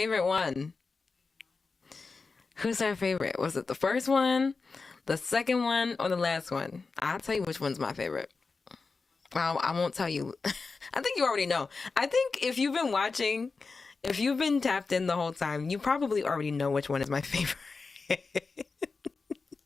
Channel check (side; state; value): right; quieter; 4.3 dB